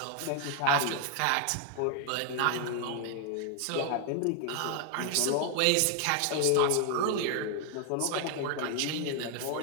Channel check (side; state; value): both; different; correlation 0.00